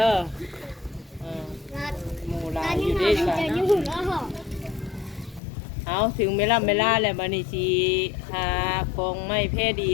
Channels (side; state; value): right; drops out; at 5.4 s